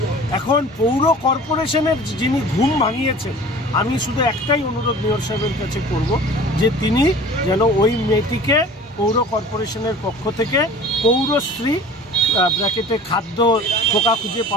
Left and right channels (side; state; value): both; normal; correlation 0.42